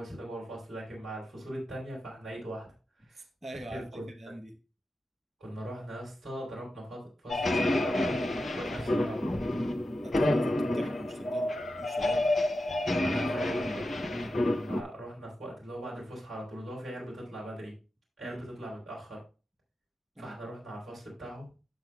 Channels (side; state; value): both; normal; correlation 0.90